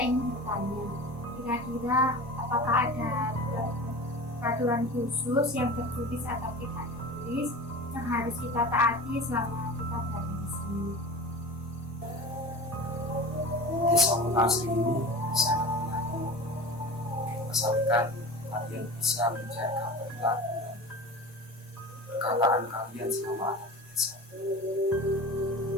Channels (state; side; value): normal; both; correlation 0.34